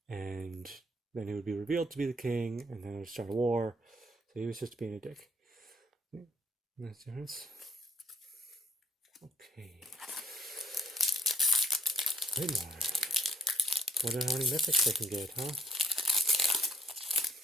and then he would be revealed to be the king, and then it would start a war. So he was just being a dick. That's the difference. Okay. Wait more. Wonder how many mythics they can get, huh?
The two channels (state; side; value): normal; both; correlation 0.62